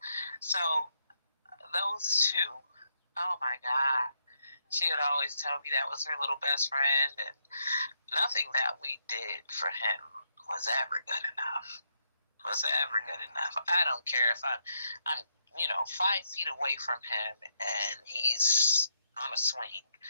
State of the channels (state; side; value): inverted; both; correlation -0.78